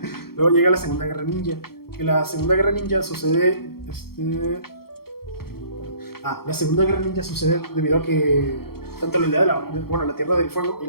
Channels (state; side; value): late; right; 0.94 ms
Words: Luego llega la Segunda Guerra Ninja, que la Segunda Guerra Ninja sucede la Segunda Guerra Ninja sucede debido a que tanto la aldea la Tierra del Fuego y